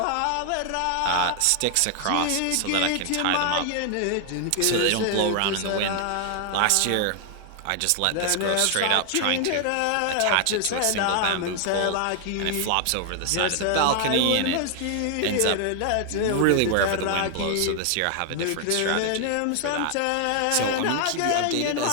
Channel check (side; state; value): both; different; correlation 0.00